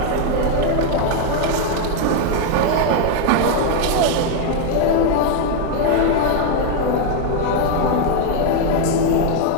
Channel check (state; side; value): different; both; correlation 0.00